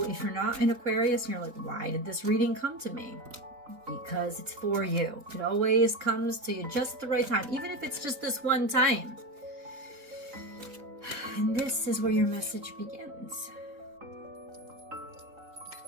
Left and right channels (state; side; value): late; left; 3.5 ms